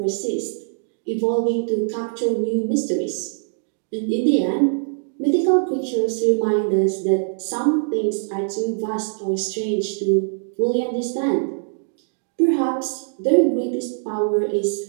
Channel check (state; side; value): silent; left; digital silence